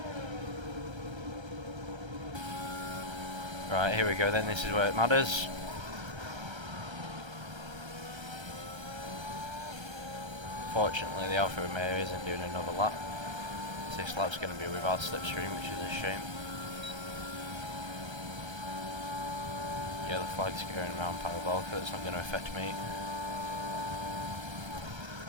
Right, here we go then, this is where it matters. Fortunately, the Alfa Romeo isn't doing another lap. This lap's going to be without slipstream, which is a shame. Yeah, the flag's going around parabolic, that's not going to affect me.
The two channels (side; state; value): left; late; 1.3 ms